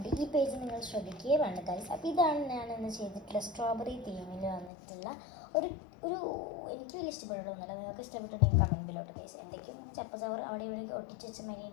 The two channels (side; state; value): right; drops out; at 4.7 s